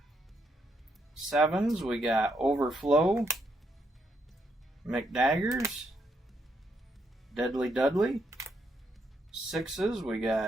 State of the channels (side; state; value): both; normal; correlation 0.77